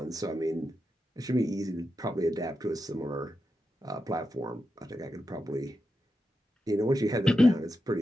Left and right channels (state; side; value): normal; both; correlation 0.88